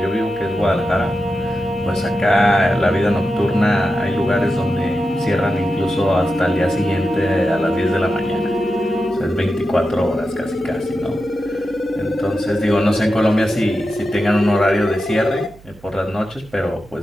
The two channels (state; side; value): noise; right; hum, 24 dB below the sound